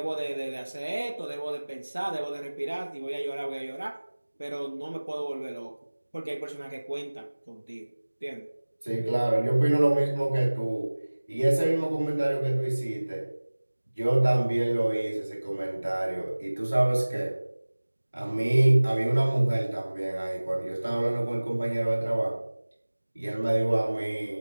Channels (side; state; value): both; inverted; correlation -1.00